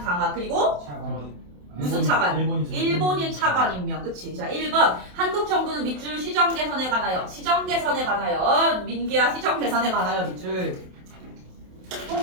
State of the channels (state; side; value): late; left; 27 ms